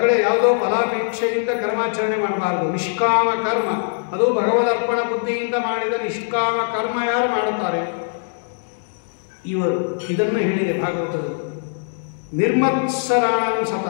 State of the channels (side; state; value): right; silent; digital silence